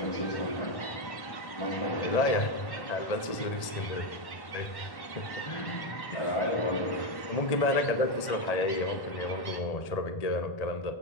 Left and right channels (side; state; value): right; late; 1.8 ms